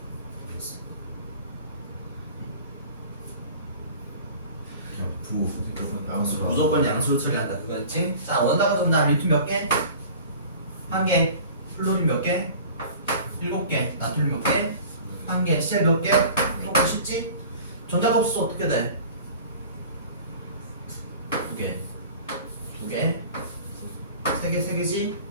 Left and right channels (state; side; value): inverted; both; correlation -0.43